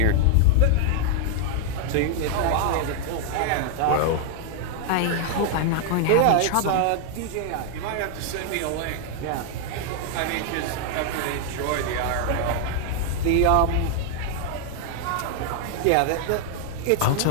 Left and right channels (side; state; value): both; different; correlation 0.00